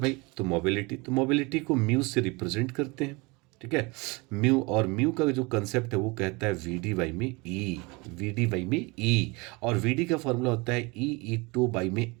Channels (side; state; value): left; quieter; 26.4 dB